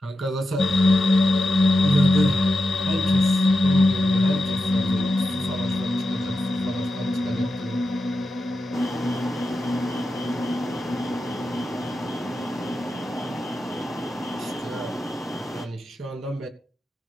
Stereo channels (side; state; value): both; normal; correlation 0.89